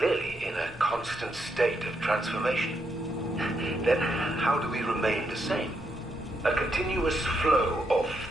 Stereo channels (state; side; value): normal; both; correlation 0.79